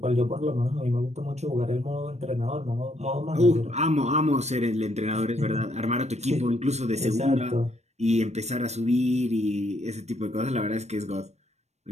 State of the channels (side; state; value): left; late; 0.32 ms